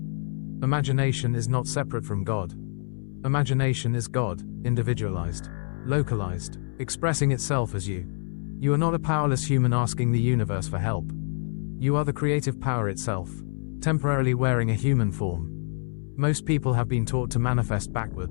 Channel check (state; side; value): silent; right; 61 dB below the other